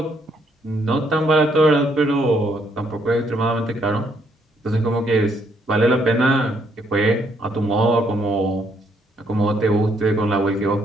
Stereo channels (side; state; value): both; normal; correlation 0.71